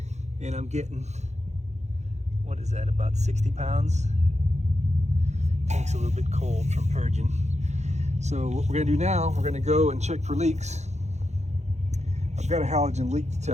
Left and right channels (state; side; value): late; left; 0.33 ms